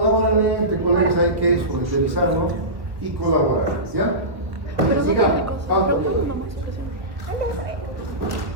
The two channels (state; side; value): late; left; 1.3 ms